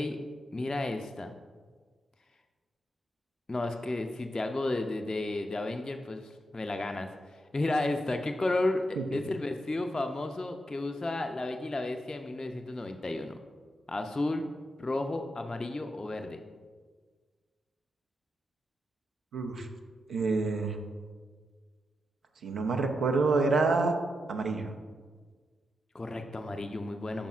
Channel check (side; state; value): both; normal; correlation 0.85